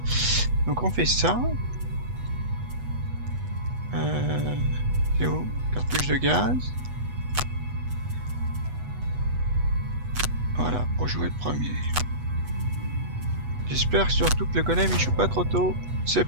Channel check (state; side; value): late; left; 8.2 ms